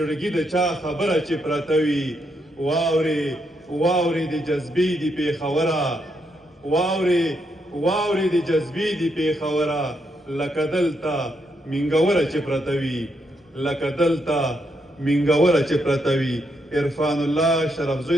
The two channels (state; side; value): normal; both; correlation 0.79